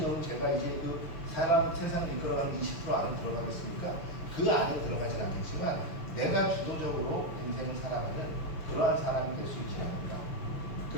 넘은 제가 이제 그 세상을 이끌어가는 20% 안에 들어가겠습니까? 그 안에 들어가진 않겠지만 내가 주도적으로 인생을 살아가는 그러한 사람이 될 수 있지 않을까.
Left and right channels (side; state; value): right; late; 6.4 ms